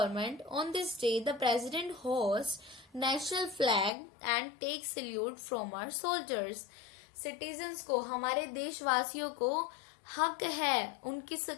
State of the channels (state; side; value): drops out; right; at 3.9 s